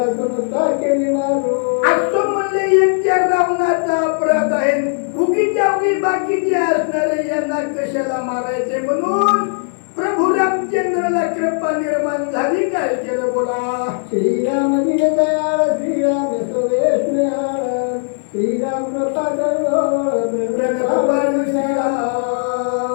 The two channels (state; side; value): silent; right; digital silence